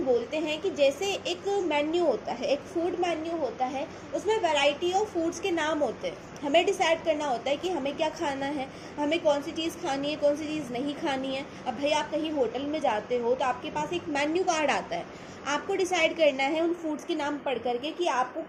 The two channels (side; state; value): both; identical; correlation 1.00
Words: बोलते हैं कि जैसे एक मेन्यू होता है, एक फूड मेन्यू होता है, उसमें वैरायटी ऑफ फूड्स के नाम होते हैं। हमें डिसाइड करना होता है कि हमें क्या खाना है, हमें कौन सी चीज़ खानी है, कौन सी चीज़ नहीं खानी है। अब भाई आप कहीं होटल में जाते हो तो आपके पास एक मेन्यू कार्ड आता है, आपको डिसाइड करना है उन फूड्स के नाम पढ़ करके कि